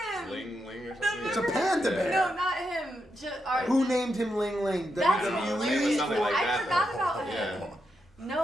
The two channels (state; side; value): normal; both; correlation 0.84